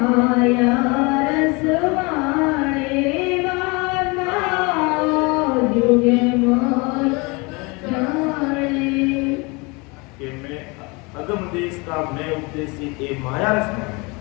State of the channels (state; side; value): quieter; right; 27.6 dB